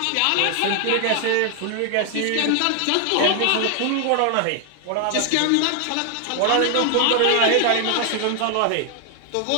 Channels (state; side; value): different; both; correlation 0.00